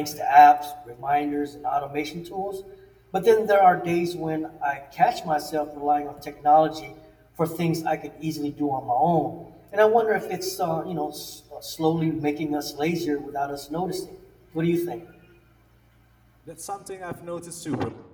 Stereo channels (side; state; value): both; identical; correlation 1.00